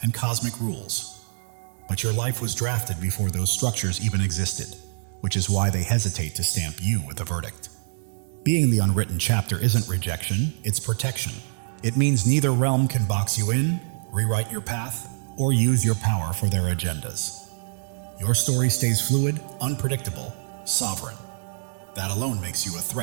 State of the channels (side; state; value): left; silent; digital silence